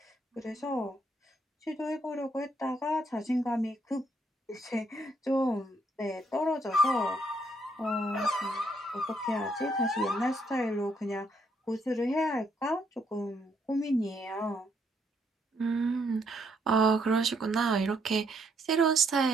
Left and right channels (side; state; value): both; normal; correlation 0.72